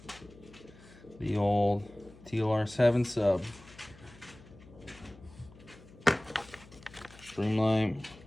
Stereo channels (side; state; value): left; noise; hum, 22 dB below the sound